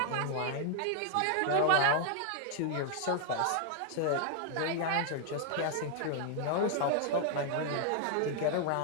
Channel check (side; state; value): both; different; correlation 0.00